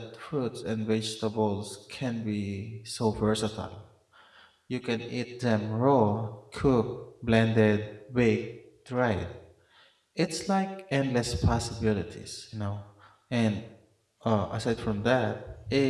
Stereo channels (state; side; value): identical; both; correlation 1.00